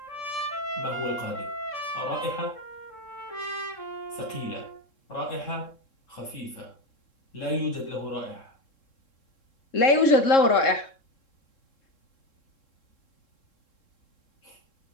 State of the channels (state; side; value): late; right; 3.7 ms